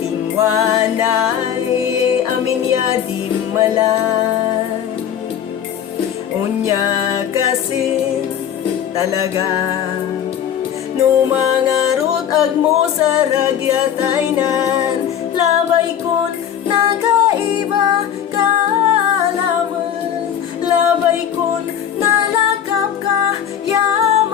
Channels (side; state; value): right; quieter; 9.3 dB